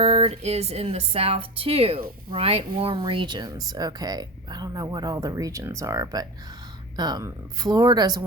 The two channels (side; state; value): both; normal; correlation 0.26